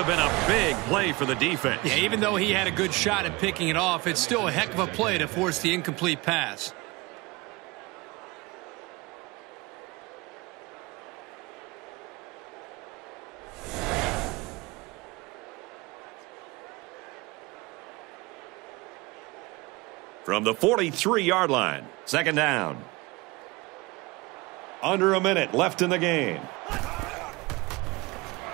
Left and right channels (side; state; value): left; quieter; 23.5 dB